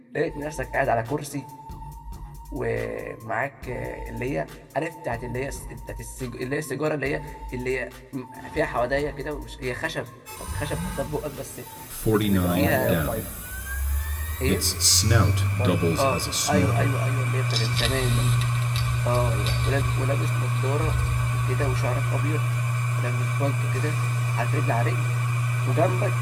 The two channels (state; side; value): identical; both; correlation 1.00